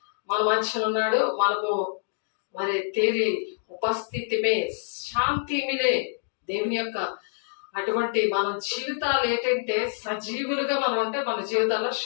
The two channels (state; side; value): silent; right; digital silence